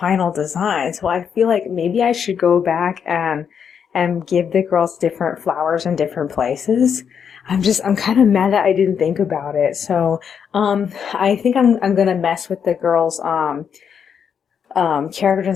design, so I feel like maybe I should go back and give the girls different flowers in different places. I'm kind of mad that I didn't think about it. So, I think I'm gonna mess with the girls' character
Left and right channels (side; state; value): right; quieter; 7.4 dB